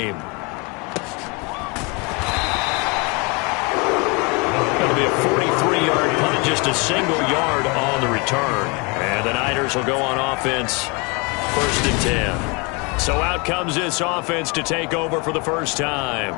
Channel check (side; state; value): right; quieter; 30.0 dB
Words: Going to be a 43-yard punt, just a single yard on the return. And the Niners will go on offense, 1st and 10. So out comes this offense to take over for the first time.